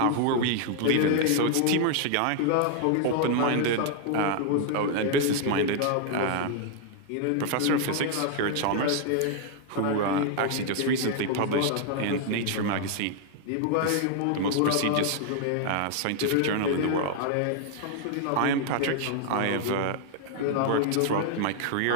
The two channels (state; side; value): different; both; correlation 0.00